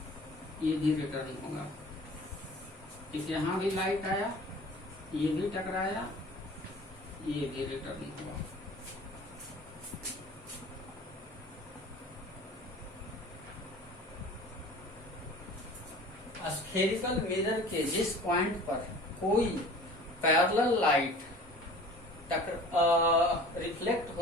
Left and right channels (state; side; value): normal; both; correlation 0.44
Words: ये भी रिटर्न होगा। इस यहाँ भी लाइट आया, ये भी टकराया, ये भी रिटर्न हुआ। स्फेरिकल मिरर के जिस पॉइंट पर कोई पैरेलल लाइट रिफ्लेक्ट